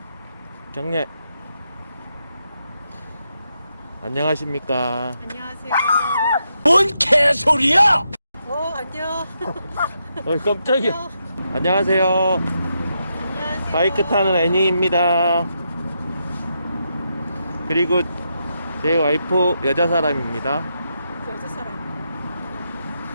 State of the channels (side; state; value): both; inverted; correlation -0.82